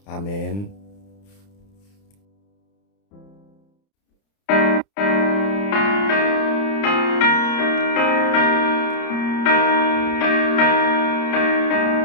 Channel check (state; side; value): late; right; 30 ms